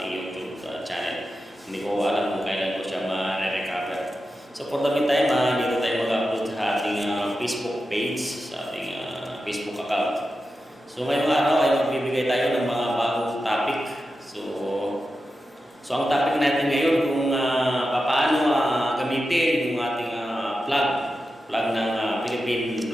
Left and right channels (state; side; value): normal; both; correlation 0.91